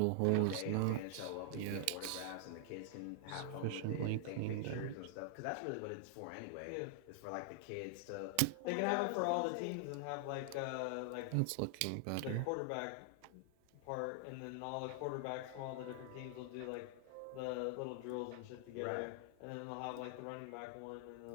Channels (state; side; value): different; both; correlation 0.00